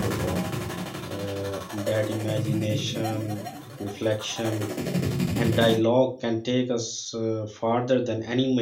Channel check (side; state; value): both; identical; correlation 1.00